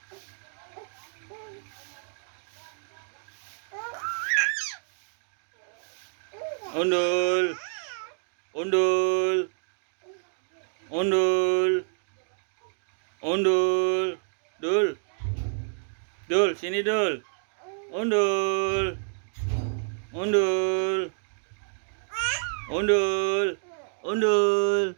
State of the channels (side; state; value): left; silent; digital silence